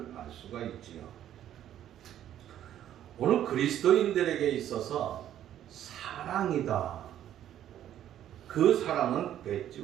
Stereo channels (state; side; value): quieter; left; 11.3 dB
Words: 알 수가 있지요. 오늘 그리스도인들에게 있어서 사랑이다. 그 사랑은